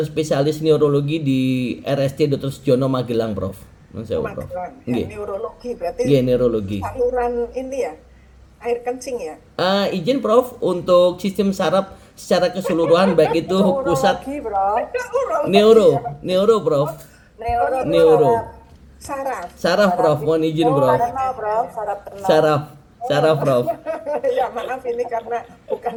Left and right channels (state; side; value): identical; both; correlation 1.00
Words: spesialis neurologi di RST Dr. Sujono Magelang, Prof. Magelang. Ya, neurologi berarti. Iya, neurologi. Saluran ini ya, air kencing ya? Izin Prof untuk sistem saraf secara keseluruhan baik itu pusat neuro Prof. Neuro. Saraf Prof, mohon izin Prof. Saraf Prof. Ya maaf ini karena